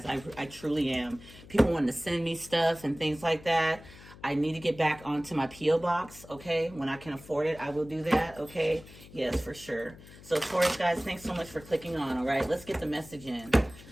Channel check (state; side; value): noise; left; hum, 19 dB below the sound